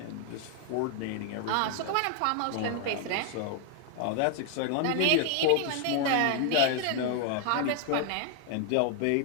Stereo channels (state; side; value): different; both; correlation 0.00